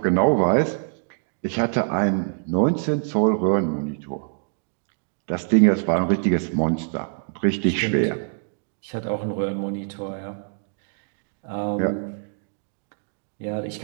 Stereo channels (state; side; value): silent; left; digital silence